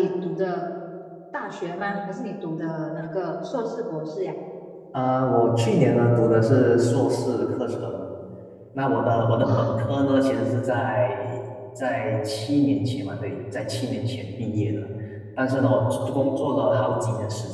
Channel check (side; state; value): both; identical; correlation 1.00